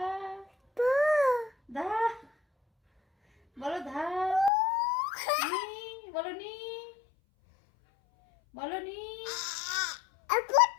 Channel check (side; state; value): right; drops out; at 4.5 s